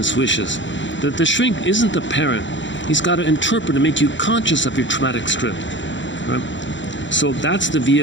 wishes. The shrink isn't the parent. He's got to interpret and make you conscious of your traumatic script, right? So that's the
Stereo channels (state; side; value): late; right; 0.54 ms